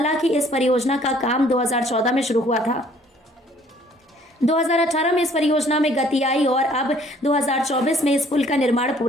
इस परियोजना का काम 2014 में शुरू हुआ था। 2018 में इस परियोजना में गति आई और अब 2024 में इस पुल का निर्माण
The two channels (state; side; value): normal; both; correlation 0.59